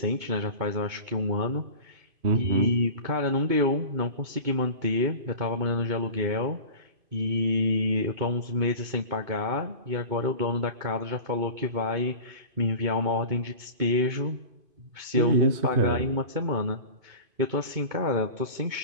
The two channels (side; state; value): left; late; 2.5 ms